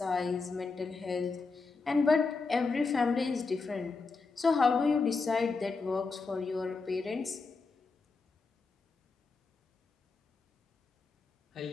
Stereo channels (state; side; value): quieter; right; 4.2 dB